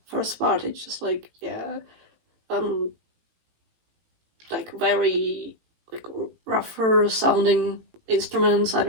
first part. It's just like, yeah, like very like rougher sounding instruments. I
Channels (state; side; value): late; left; 18 ms